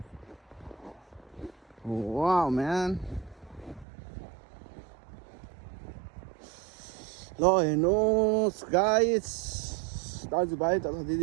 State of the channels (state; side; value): drops out; left; at 3.9 s